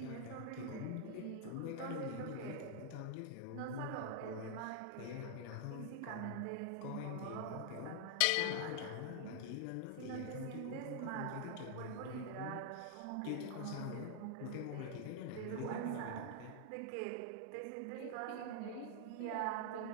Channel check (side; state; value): both; different; correlation 0.00